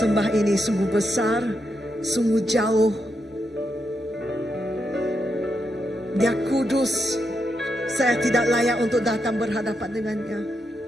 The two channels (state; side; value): normal; both; correlation 0.83